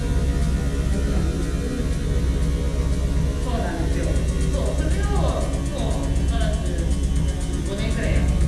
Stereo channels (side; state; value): both; identical; correlation 1.00